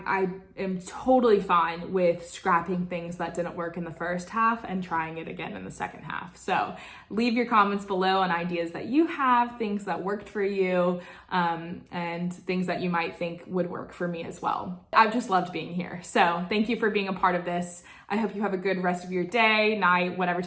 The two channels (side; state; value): both; identical; correlation 1.00